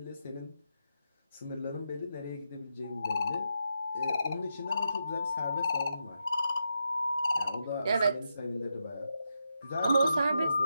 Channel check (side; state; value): both; inverted; correlation -0.84